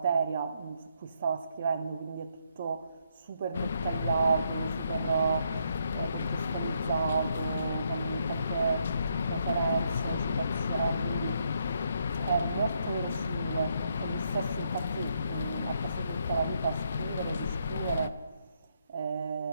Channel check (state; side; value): inverted; both; correlation -0.75